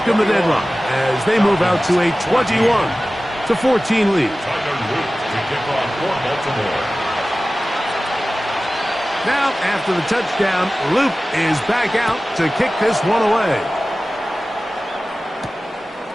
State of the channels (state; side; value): normal; both; correlation 0.96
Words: the deadlock as they move out to a 21-14 lead. Now, after the touchdown, Luke is back out to kick this one away.